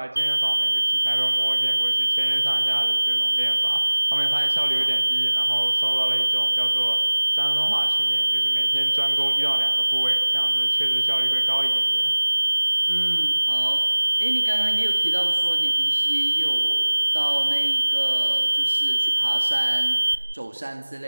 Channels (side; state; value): both; inverted; correlation -1.00